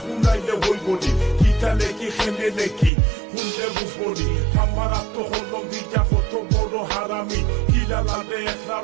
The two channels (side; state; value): left; drops out; at 2.9 s